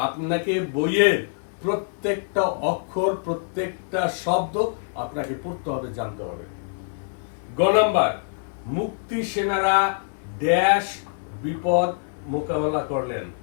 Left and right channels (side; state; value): right; silent; 62 dB below the other